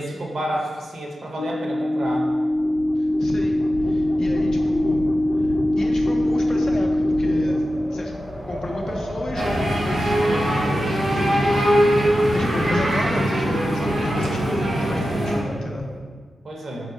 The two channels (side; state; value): both; normal; correlation 0.93